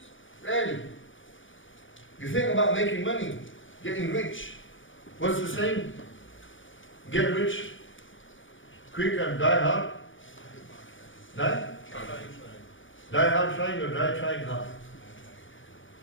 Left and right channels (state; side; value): late; right; 0.56 ms